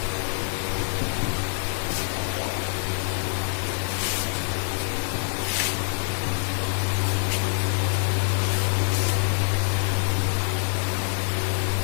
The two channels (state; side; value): silent; right; digital silence